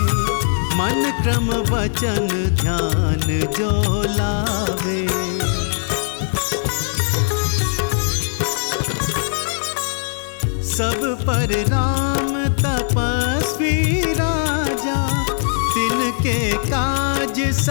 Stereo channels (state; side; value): silent; right; 64 dB below the other